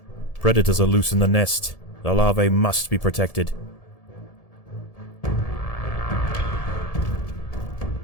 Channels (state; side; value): late; right; 1.7 ms